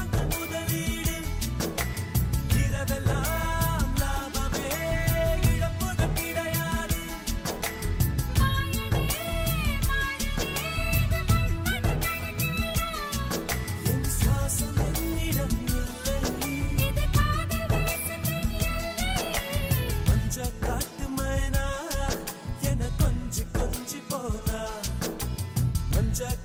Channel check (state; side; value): identical; both; correlation 1.00